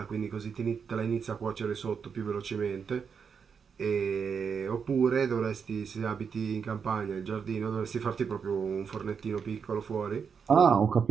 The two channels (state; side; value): quieter; left; 6.4 dB